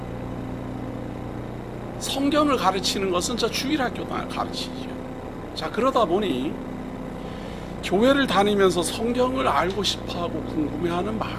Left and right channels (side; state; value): both; identical; correlation 1.00